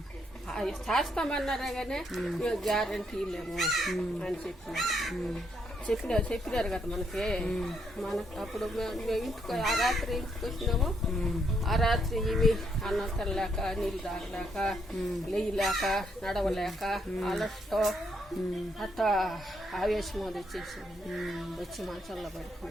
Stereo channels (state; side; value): normal; both; correlation 0.75